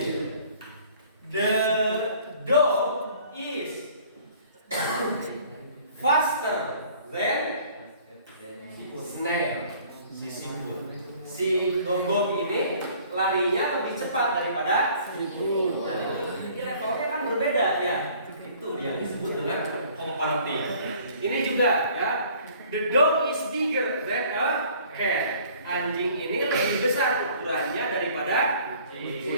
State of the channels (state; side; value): inverted; both; correlation -0.54